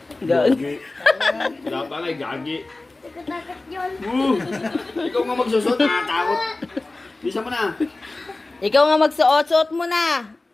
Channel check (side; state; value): right; quieter; 3.1 dB